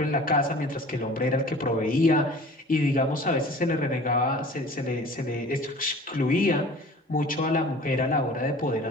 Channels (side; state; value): both; normal; correlation 0.44